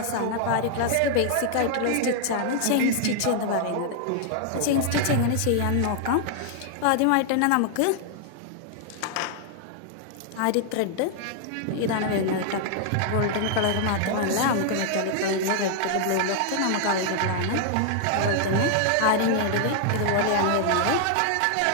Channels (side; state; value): both; different; correlation 0.00